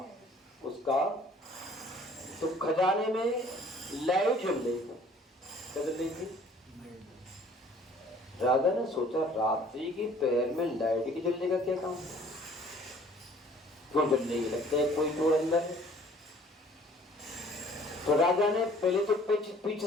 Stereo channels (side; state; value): both; normal; correlation 0.54